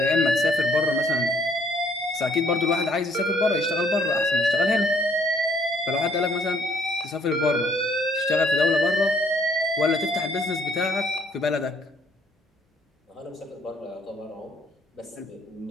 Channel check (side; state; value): both; normal; correlation 0.64